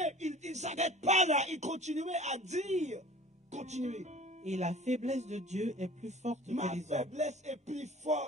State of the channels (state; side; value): normal; both; correlation 0.45